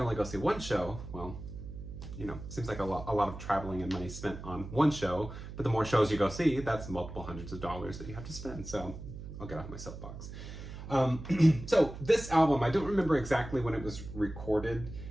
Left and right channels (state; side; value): noise; right; hum, 11 dB below the sound